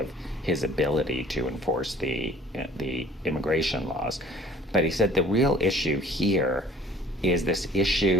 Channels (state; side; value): normal; both; correlation 0.53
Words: his ability to enforce the immigration laws. But he said the real issue here is this